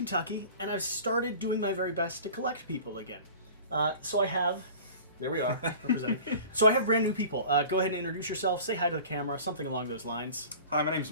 and I've started doing my very best to collect people again. So I have... There we are, representing. So I have brand new people. Go ahead and introduce yourself, say hi to the camera, something along those lines. Hi, my name's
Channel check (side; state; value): both; inverted; correlation -0.41